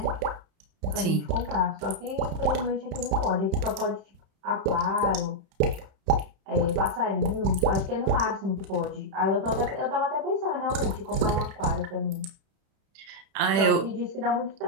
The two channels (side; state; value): left; late; 31 ms